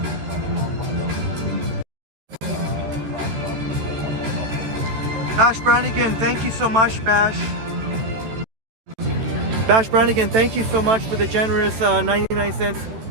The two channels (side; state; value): left; late; 13 ms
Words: Bash Brannigan, thank you so much, Bash. Bash Brannigan, thank you so much for the generous 99 cents.